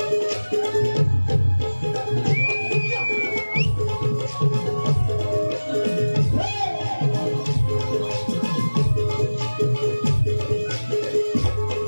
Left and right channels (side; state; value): both; inverted; correlation -1.00